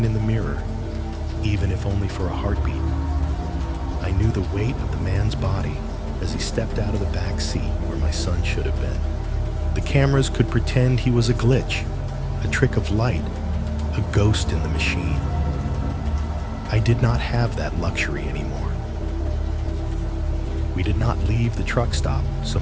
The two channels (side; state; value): both; identical; correlation 1.00